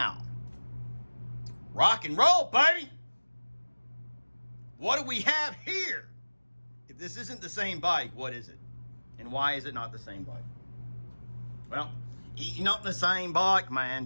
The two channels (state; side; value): inverted; both; correlation -1.00